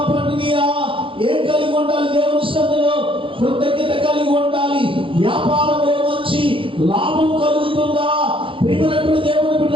పండినయా? ఏం కలిగి ఉండాలి? దేవుని సన్నిధిలో కృతజ్ఞత కలిగి ఉండాలి. వ్యాపారంలో మంచి లాభం కలుగుతుందా? ప్రియమైనటువంటి దేవుని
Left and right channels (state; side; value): late; left; 0.25 ms